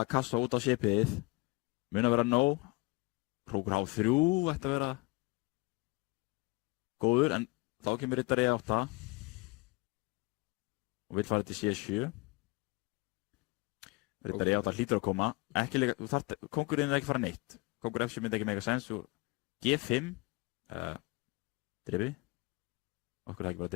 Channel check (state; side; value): quieter; right; 24.0 dB